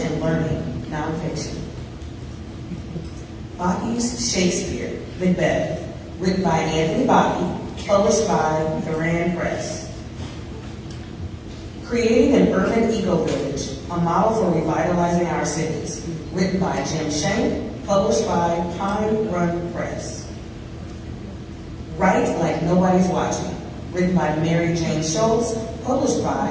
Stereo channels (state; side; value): identical; both; correlation 1.00